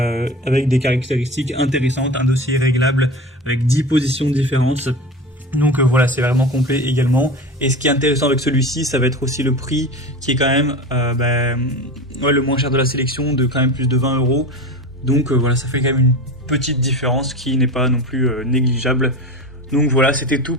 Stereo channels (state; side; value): normal; both; correlation 0.30